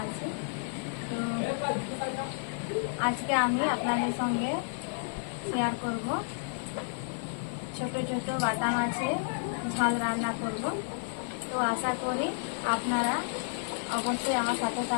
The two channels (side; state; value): right; silent; digital silence